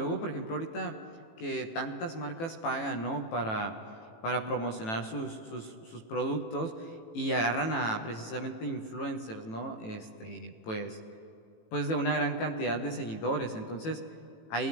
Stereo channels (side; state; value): right; late; 18 ms